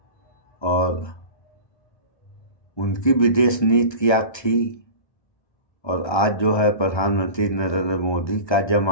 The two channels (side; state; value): right; late; 1.3 ms